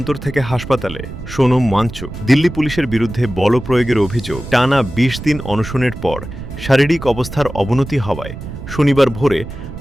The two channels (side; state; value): right; noise; rumble, 11 dB below the sound